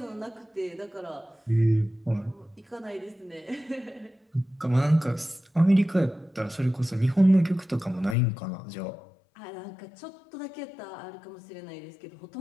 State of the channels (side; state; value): right; drops out; at 8.2 s